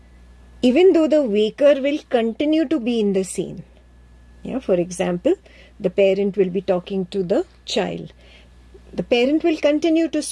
Even though the waker will continue to be in the scene. Yeah, for example, the parent will be talking to the child. The parent will continue to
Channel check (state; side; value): identical; both; correlation 1.00